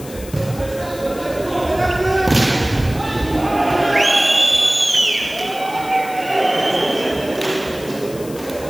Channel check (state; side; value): noise; left; hiss, 17 dB below the sound